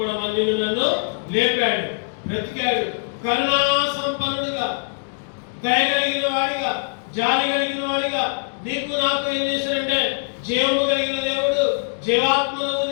నిన్ను నన్ను లేపాడు, బ్రతికాడు. కరుణా సంపన్నుడిగా, దయ కలిగిన వాడిగా, జాలి కలిగిన వాడిగా నీకు నాకు ఏం చేశాడంటే జీవము కలిగిన దేవుడు జీవాత్మను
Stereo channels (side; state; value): right; silent; digital silence